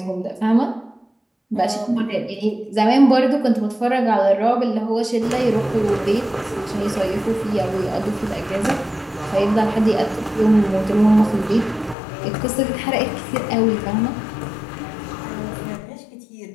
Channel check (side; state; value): right; drops out; at 12.0 s